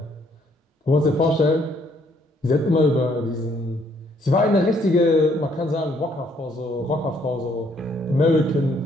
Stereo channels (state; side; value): normal; both; correlation 0.67